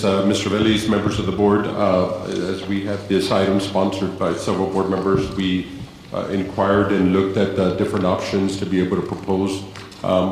Mr. Veliz, members of the board, as we had this item sponsored by several board members, we inquired and looked at different options to be able to propose.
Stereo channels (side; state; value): both; identical; correlation 1.00